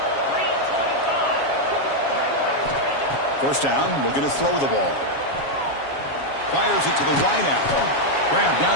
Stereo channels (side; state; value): right; late; 7.3 ms